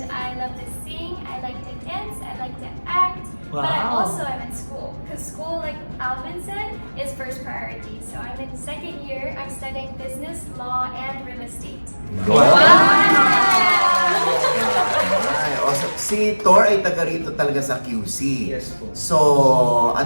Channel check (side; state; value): both; inverted; correlation -1.00